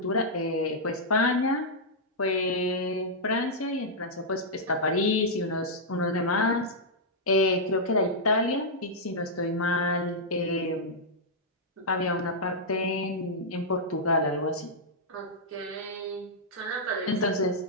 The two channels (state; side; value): normal; both; correlation -0.08